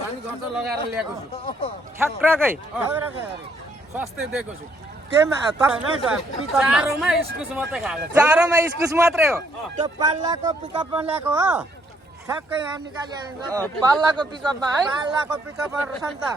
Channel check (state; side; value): normal; both; correlation 0.69